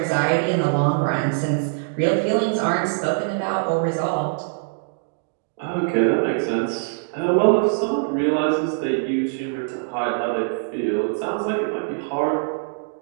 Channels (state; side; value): silent; left; digital silence